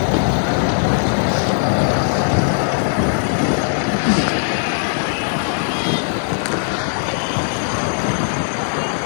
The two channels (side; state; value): right; silent; digital silence